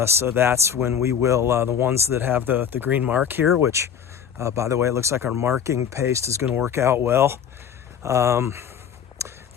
So that's when we will, the ones that have the green mark here, which, by the way, it looks like our marking paste is going to work out well.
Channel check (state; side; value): quieter; right; 8.1 dB